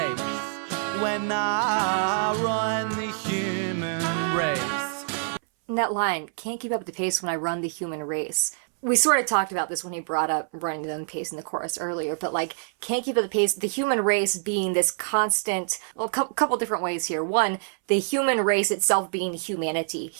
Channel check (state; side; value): silent; left; 61 dB below the other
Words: when I run the human race. And that line, can't keep up with the pace when I run the human race. We sort of talked about this when he brought up running the pace in the chorus earlier, but like, can't keep up the pace, the human race being this constant, well, a couple different ways here. One, the human race itself being humanity,